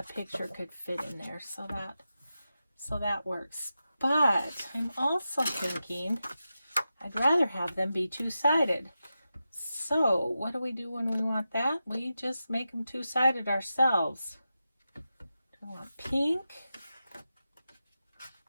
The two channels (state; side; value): inverted; both; correlation -0.91